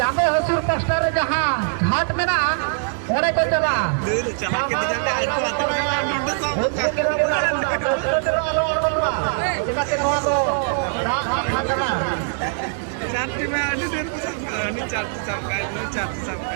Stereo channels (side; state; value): left; silent; digital silence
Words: हसूर पास्टर जहां घाट में ना ओरे को चला चला के दिखाते आज को आते हैं नोट सो चार्टी में आने देर को सब नहीं चार्टी सब का नहीं चार्टी सब